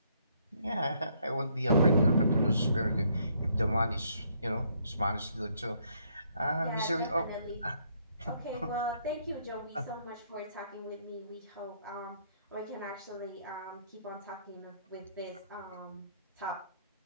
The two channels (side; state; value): both; inverted; correlation -0.69